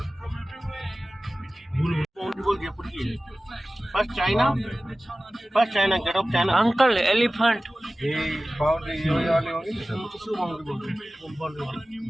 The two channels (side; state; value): both; normal; correlation 0.97